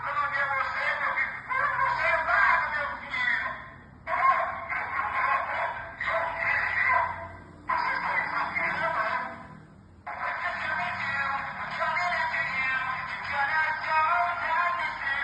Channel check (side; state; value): both; identical; correlation 1.00